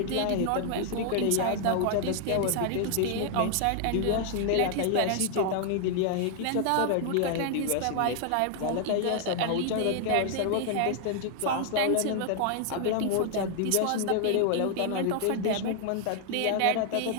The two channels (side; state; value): both; different; correlation 0.00